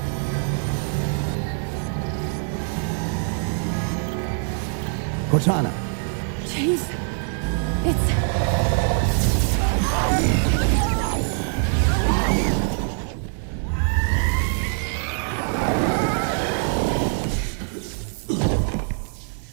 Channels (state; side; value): silent; left; 56 dB below the other